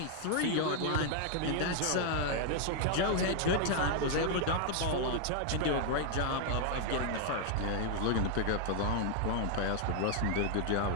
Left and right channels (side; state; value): both; different; correlation 0.00